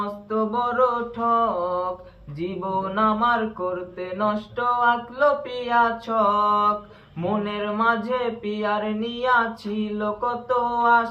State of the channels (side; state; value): both; identical; correlation 1.00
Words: বড় ঠক, জীবন আমার করতে নষ্ট আঁকলো পিয়া ছক। মনের মাঝে পিয়ার নিয়া ছিল কত